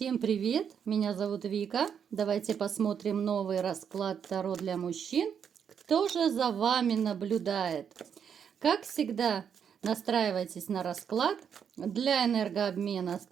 привет! Меня зовут Вика. Давайте посмотрим новый расклад Таро для мужчин. Кто же за вами наблюдает? Как всегда, настраивайтесь на расклад. Для энергообмена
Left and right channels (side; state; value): left; quieter; 7.7 dB